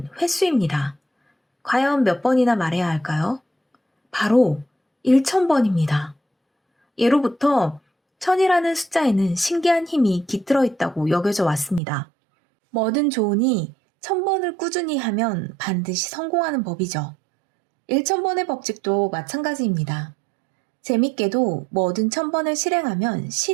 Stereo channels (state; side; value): drops out; left; at 11.8 s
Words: 횟수입니다. 과연 몇 번이나 말해야 할까요? 바로 1000번입니다. 예로부터 1000이라는 숫자에는 신기한 힘이 깃들어 있다고 여겨져 왔습니다. 뭐든 좋으니 1000번을 꾸준히 하면 반드시 성공하는 법이죠. 1000번의 법칙도 마찬가지입니다. 재밌게도 뭐든 1000번을 실행하면